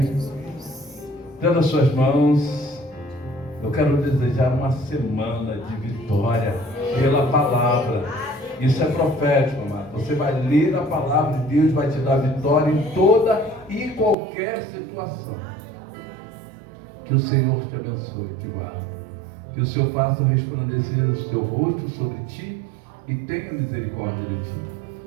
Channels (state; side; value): drops out; left; at 14.2 s